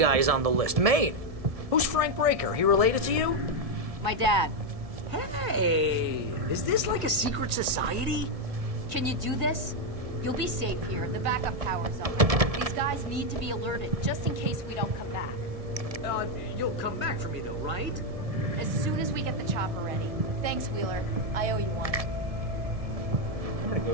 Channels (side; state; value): left; late; 1.6 ms